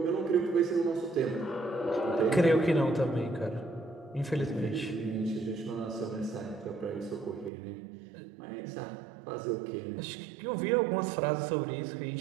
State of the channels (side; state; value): left; drops out; at 7.5 s